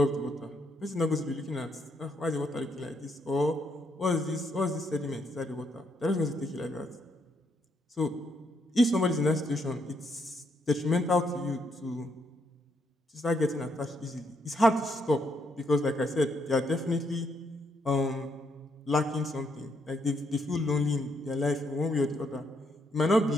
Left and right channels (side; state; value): both; normal; correlation 0.75